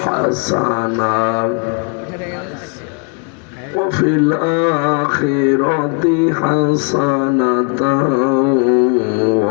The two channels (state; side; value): quieter; right; 38.7 dB